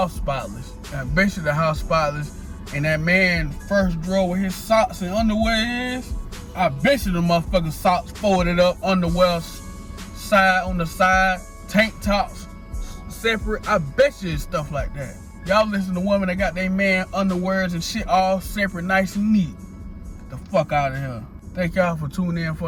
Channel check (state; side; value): identical; both; correlation 1.00